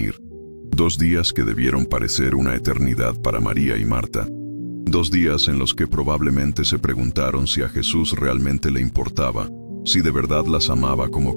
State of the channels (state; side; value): inverted; both; correlation -1.00